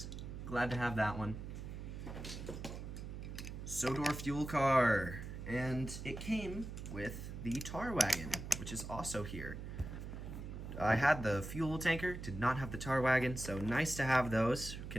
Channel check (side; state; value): right; noise; hum, 8 dB below the sound